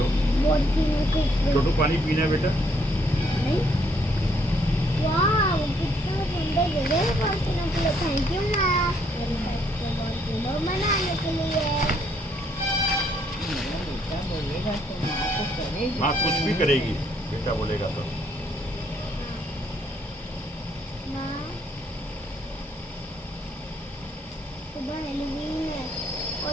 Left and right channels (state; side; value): normal; both; correlation 0.69